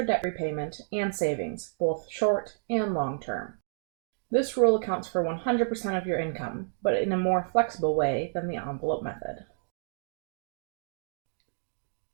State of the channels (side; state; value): left; silent; digital silence